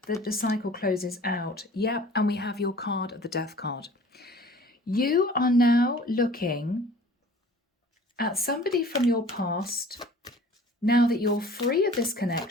that the cycle closes out. Yep, and we have your card of the Death card. You are now looking at somebody from your past, now that you're free of this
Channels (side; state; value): both; normal; correlation 0.48